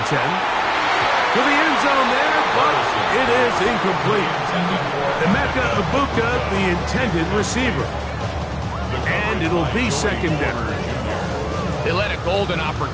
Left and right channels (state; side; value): identical; both; correlation 1.00